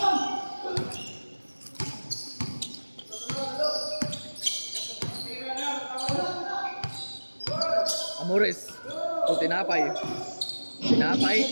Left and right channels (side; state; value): both; inverted; correlation -1.00